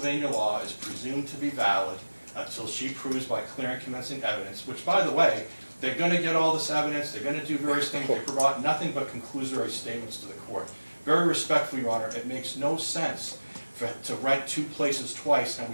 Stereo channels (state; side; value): inverted; both; correlation -1.00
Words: law is presumed to be valid until she proves by clear and convincing evidence, which, by the way, they're going to get all this evidence, they're going to do various things, they provide nothing but conclusory statements to the court. Very respectfully, Your Honor, it makes no sense to rent 2 places twice, and